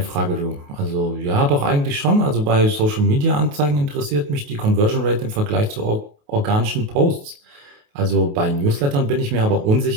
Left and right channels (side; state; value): left; late; 28 ms